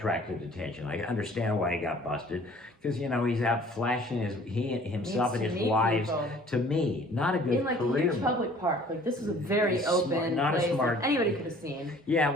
attention. I understand why he got busted, because he's out flashing himself and Needs his to meet wives people. to me. Not a good In like a career. huge public park. Like this is a very open not a place smart- that anybody could have seen. Yeah,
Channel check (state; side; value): normal; both; correlation 0.52